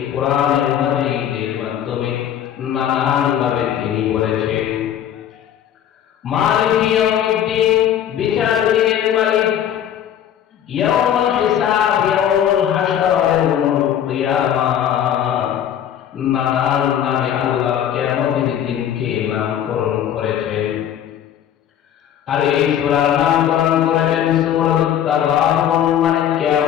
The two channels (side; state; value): right; quieter; 10.1 dB